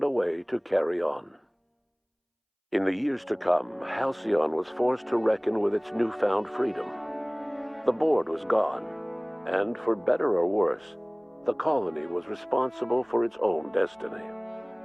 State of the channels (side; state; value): both; identical; correlation 1.00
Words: a way to carry on. In the years to come, Halcyon was forced to reckon with its newfound freedom. The board was gone, and for better or worse, the colony was responsible for its own destiny.